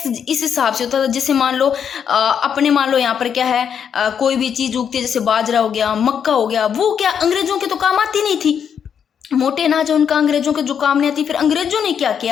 इस हिसाब से होता था, जैसे मान लो अपने मान लो यहाँ पर क्या है, कोई भी चीज उगती है, जैसे बाजरा हो गया, मक्का हो गया, वो क्या अंग्रेजों के तो काम आती नहीं थी। मोटे अनाज है उनका, अंग्रेजों के जो काम नहीं आती। फिर अंग्रेजों ने क्या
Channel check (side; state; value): right; quieter; 7.8 dB